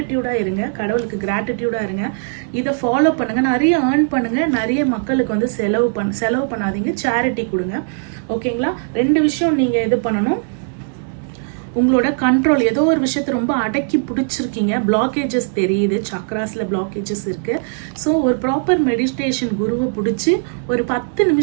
இருங்க, கடவுளுக்கு கிராட்டிடியூடாக இருங்க. இதை ஃபாலோ பண்ணுங்க, நிறைய ஏர்ன் பண்ணுங்க, நிறைய மக்களுக்கு வந்து செலவு பண்ணாதீங்க, சேரிட்டி கொடுங்க. ஓகேங்களா? ரெண்டு விஷயம் நீங்கள் இது பண்ணணும். உங்களோட கண்ட்ரோல், ஏதோ ஒரு விஷயத்தை ரொம்ப அடக்கி பிடிச்சிருக்கீங்க, பிளாக்கேஜஸ் தெரியுது, சக்ராஸில் பிளாக்கேஜஸ் இருக்கு. ஸோ ஒரு ப்ராப்பர் மெடிடேஷன் குருவை பிடிச்சி ஒரு 10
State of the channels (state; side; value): silent; left; digital silence